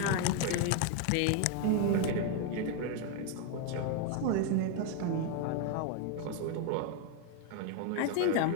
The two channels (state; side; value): different; both; correlation 0.01